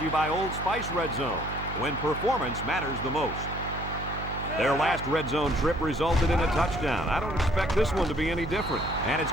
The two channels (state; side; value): noise; right; hum, 8 dB below the sound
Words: you by Old Spice Red Zone, when performance matters the most. Their last red zone trip resulted in a touchdown. I don't expect this one to be any different. And it's